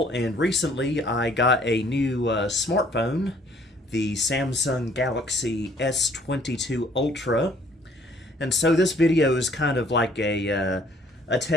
and recently I got a new smartphone, the Samsung Galaxy S22 Ultra. And so this video is kind of like a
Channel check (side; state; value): both; normal; correlation 0.60